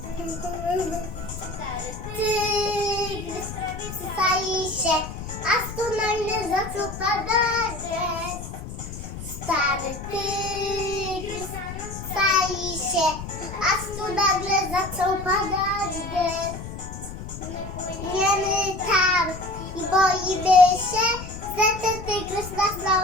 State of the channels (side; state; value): left; noise; rumble, 10 dB below the sound